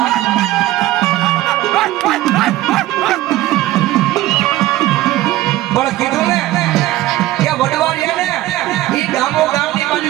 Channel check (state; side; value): quieter; left; 16.0 dB